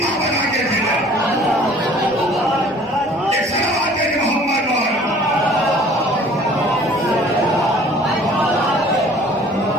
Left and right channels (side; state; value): both; normal; correlation 0.51